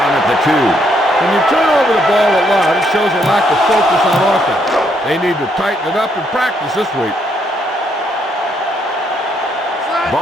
at the 2. When you turn over the ball a lot, it shows a lack of focus on offense. They need to tighten it up in practice this week.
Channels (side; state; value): both; normal; correlation 0.73